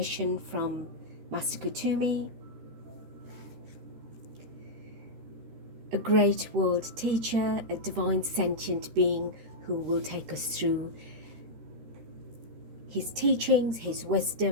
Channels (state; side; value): late; left; 13 ms